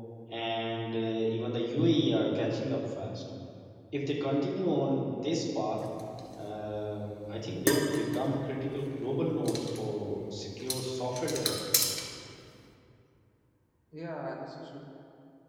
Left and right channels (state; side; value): identical; both; correlation 1.00